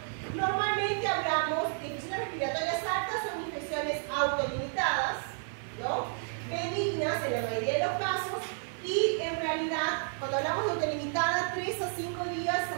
normalmente hablamos de infecciones respiratorias altas, son infecciones autolimitadas, ¿no?, benignas en la mayoría de los casos, y en realidad, cuando hablamos de autolimitada, 3 a 5 días se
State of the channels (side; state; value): left; silent; 57 dB below the other